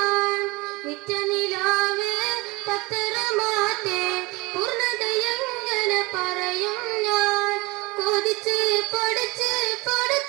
നിത്യനിലാവേ പത്തരമാറ്റേ പൂർണ്ണതയങ്ങനെ പറയും ഞാൻ. കൊതിച്ച് പഠിച്ച്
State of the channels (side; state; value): left; quieter; 24.1 dB